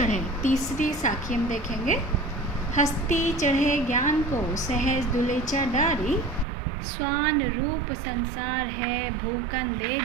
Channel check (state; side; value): drops out; left; at 6.5 s